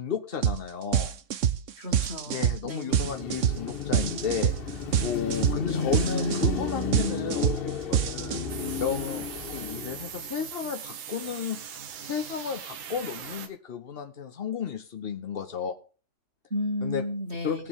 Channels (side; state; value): left; late; 3.6 ms